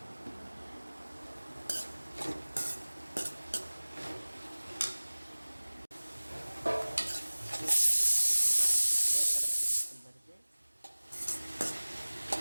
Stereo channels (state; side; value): inverted; both; correlation -1.00